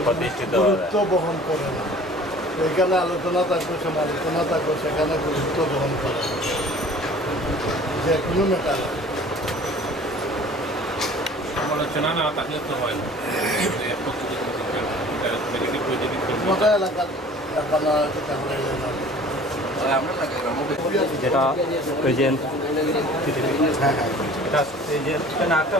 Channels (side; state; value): both; normal; correlation 0.47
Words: গুরুত্ব বহন করে না এখানে আলোচনা থাকবে সমালোচনা থাকবে সেখানে গুরুত্ব বহন করে যে কোনো ম্যাটার সমালোচনা না থাকলে তো হয় না মোটা এলাকার যেটা প্রেজেন্ট এটা প্রেজেন্ট এখানে একটা